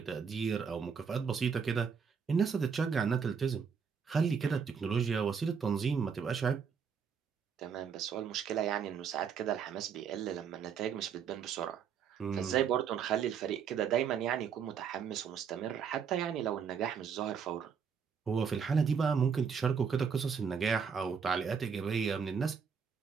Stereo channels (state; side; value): quieter; left; 6.6 dB